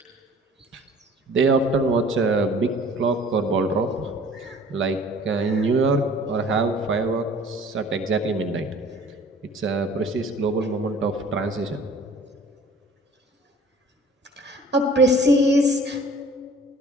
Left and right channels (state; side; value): normal; both; correlation 0.50